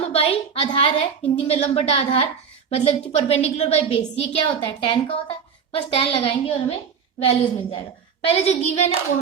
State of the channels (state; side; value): quieter; left; 6.8 dB